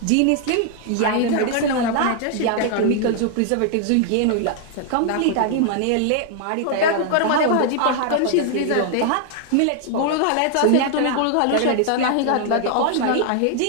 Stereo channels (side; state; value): both; different; correlation 0.00